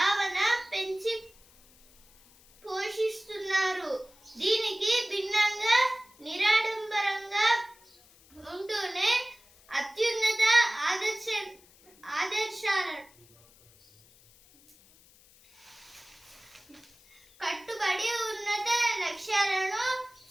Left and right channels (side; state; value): left; noise; hiss, 27 dB below the sound